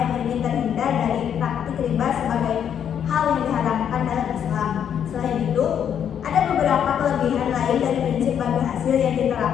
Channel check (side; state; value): right; quieter; 8.8 dB